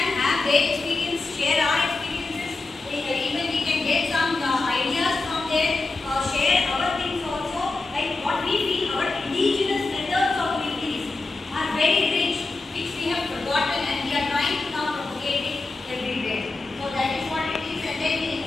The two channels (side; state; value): right; quieter; 3.5 dB